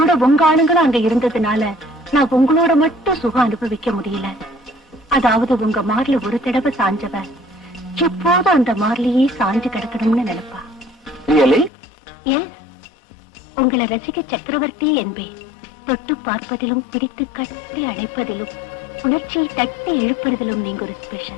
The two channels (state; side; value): drops out; right; at 11.7 s